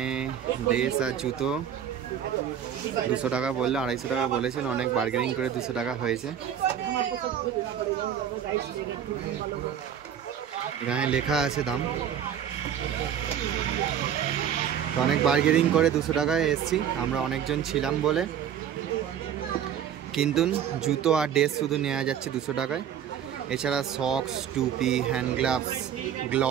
ড্রেস আর জুতো 200 টাকা বললো 250 টাকা বলেছিল অনেক বার্গেনিং করে 200 টাকা হয়েছে এখানে লেখা আছে দাম তো অনেক বার্গেনিং করে 200 টাকায় এসেছি আমরা অনেকজন ছিলাম বলে কিন্তু জুতো আর ড্রেস শুধু নেওয়া যাচ্ছে 200 টাকায় এছাড়া সক্স টুপি হ্যান্ড গ্লাভস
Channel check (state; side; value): quieter; left; 9.1 dB